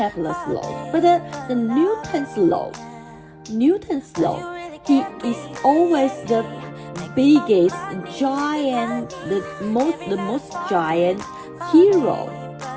law, but the Newton's law, he is always the biggest giant, the most giant hero.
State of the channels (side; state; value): both; identical; correlation 1.00